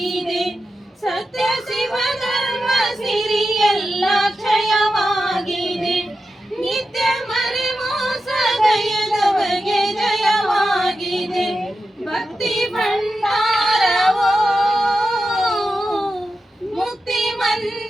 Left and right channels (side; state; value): both; normal; correlation 0.90